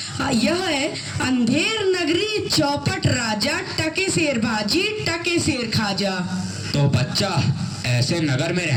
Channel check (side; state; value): both; identical; correlation 1.00